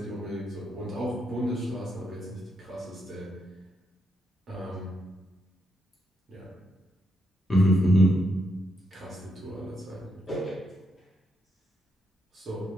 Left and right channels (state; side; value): normal; both; correlation 0.80